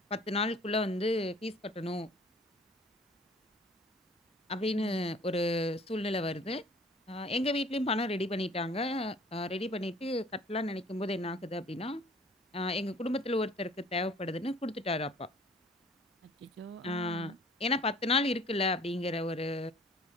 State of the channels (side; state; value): both; normal; correlation 0.52